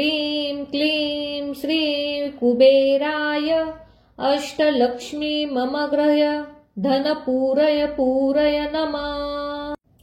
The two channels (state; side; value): identical; both; correlation 1.00